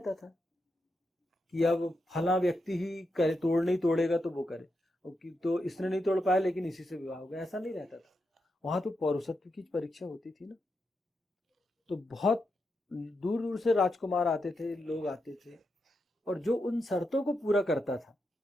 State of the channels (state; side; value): normal; both; correlation 0.85